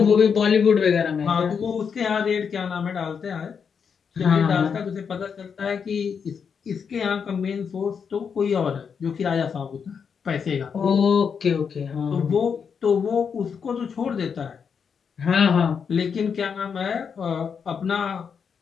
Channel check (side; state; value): right; quieter; 6.5 dB